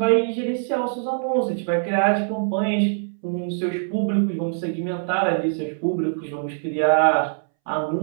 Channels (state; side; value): silent; left; 63 dB below the other